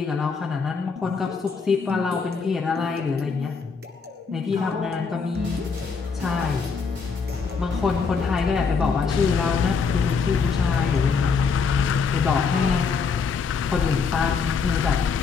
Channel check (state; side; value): quieter; right; 5.3 dB